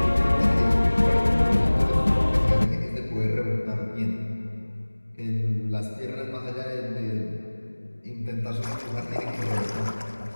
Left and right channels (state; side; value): inverted; both; correlation -1.00